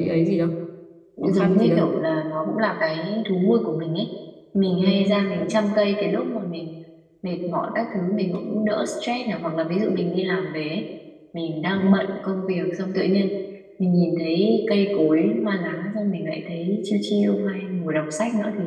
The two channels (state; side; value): identical; both; correlation 1.00